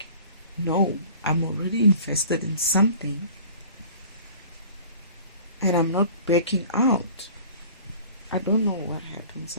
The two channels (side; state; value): both; inverted; correlation -0.46